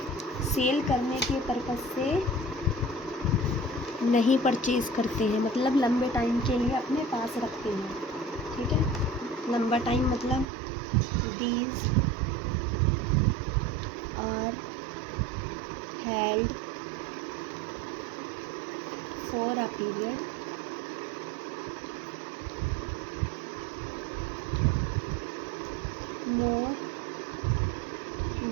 सेल करने के पर्पस से नहीं परचेज करते हैं, मतलब लंबे टाइम के लिए अपने पास रखते हैं। ठीक है, लंबा टाइम मतलब these are held for a period more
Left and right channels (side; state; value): left; drops out; at 10.5 s